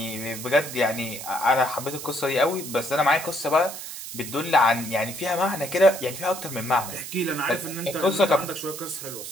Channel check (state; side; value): noise; right; hiss, 9 dB below the sound